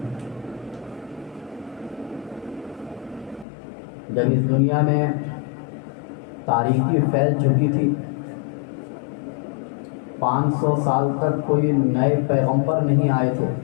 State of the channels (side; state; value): right; drops out; at 3.5 s